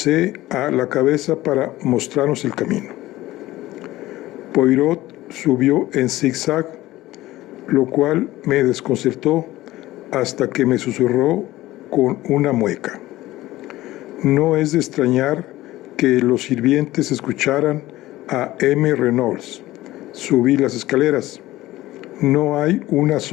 a la cabeza para mostrarnos el camino. Poirot subió en zigzag, lo cual me desconcertó hasta que me susurró con una mueca: no es de extrañar que los sirvientes escucharan a M. Reynolds subir las escaleras. No hay una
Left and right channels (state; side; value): quieter; right; 16.8 dB